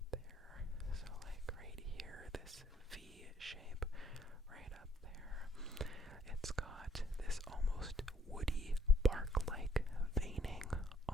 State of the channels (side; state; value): both; normal; correlation 0.66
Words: there. So like right here, this V shape right up there. It's got this almost woody bark-like veining